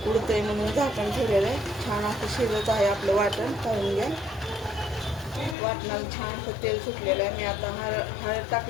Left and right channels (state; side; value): drops out; right; at 5.6 s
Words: उडतंय म्हणून झाकण ठेवलेलं आहे. छान असं शिजत आहे आपलं वाटण. पाहून घ्या. वाटणाला छान असं तेल सुटलेलं आहे. मी आता हळद